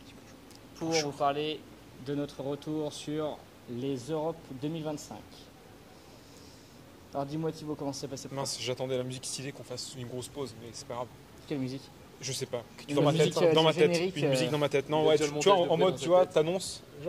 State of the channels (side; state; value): both; identical; correlation 1.00